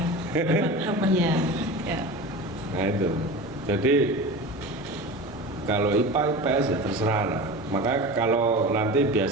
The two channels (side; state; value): both; normal; correlation 0.32